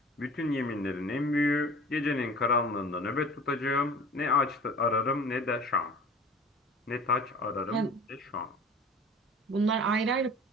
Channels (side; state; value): both; normal; correlation 0.43